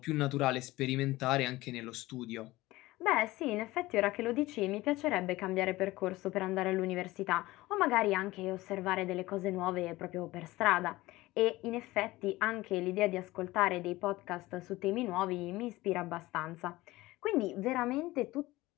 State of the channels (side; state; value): right; quieter; 18.9 dB